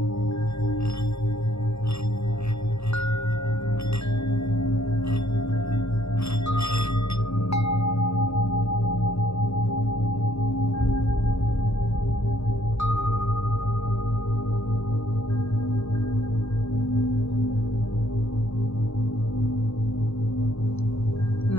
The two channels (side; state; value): right; late; 0.79 ms